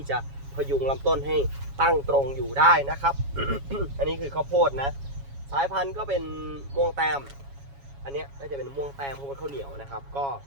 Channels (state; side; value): late; left; 7.2 ms